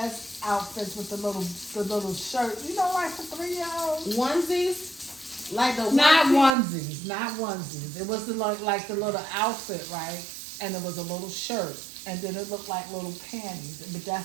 outfits with the little shirt. You know, like for 3-year-olds. Onesies? Like the Not onesie? onesies. It was like the little outfit, right? And it was a little shirt. And then it looked like little panties. But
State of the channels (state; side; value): drops out; left; at 6.6 s